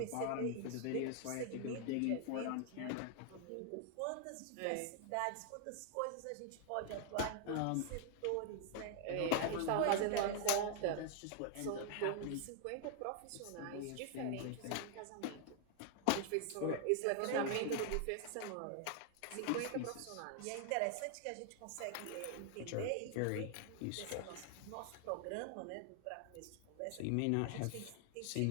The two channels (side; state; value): both; different; correlation 0.00